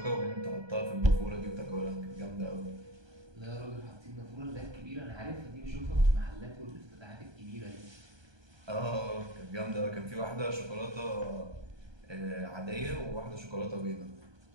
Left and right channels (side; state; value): left; late; 1.2 ms